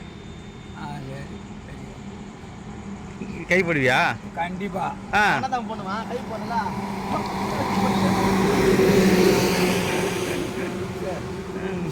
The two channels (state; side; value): identical; both; correlation 1.00